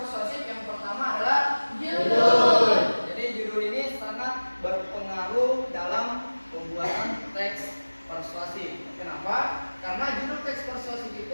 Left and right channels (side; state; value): both; inverted; correlation -1.00